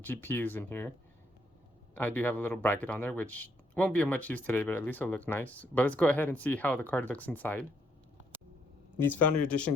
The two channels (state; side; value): normal; both; correlation 0.73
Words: in here. I do have a little bracket on there, which won't be of much use today, but at least it'll look nice. But let's go ahead and see how the card looks inside. These Founder